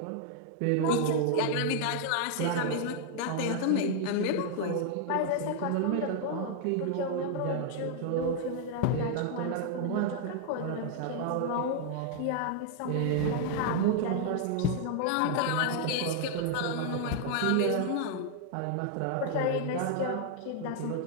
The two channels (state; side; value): different; both; correlation 0.00